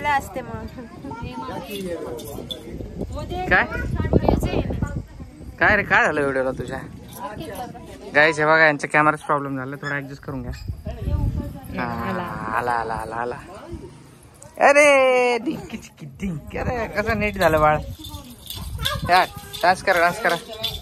असते मग. काय काय रे काय झालं व्हिडिओला तुझ्या? गाईस हे बघा यांच्या कॅमेराच प्रॉब्लेम झाला, थोडा ऍडजस्ट करून घ्या. आला आला आला आला. अरे डिंकी चिकी डिंक. अरे कसं नीट झालं बाळ. यार डान्स करा डान्स करा.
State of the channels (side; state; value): both; identical; correlation 1.00